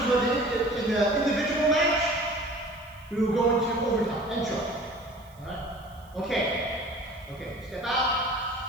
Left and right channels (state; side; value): noise; right; hiss, 29 dB below the sound